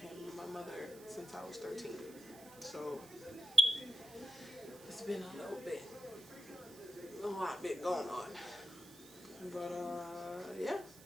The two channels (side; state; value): right; noise; hiss, 19 dB below the sound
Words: and my mother since I was 13. So it's been a lot bit going on. But yeah,